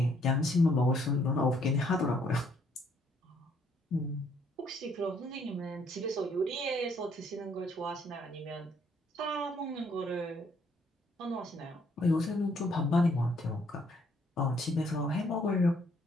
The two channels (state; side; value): normal; both; correlation 0.67